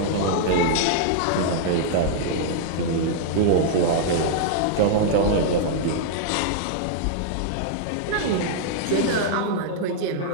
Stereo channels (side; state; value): both; different; correlation -0.01